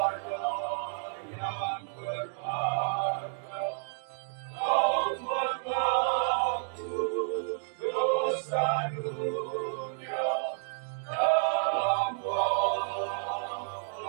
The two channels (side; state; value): left; silent; digital silence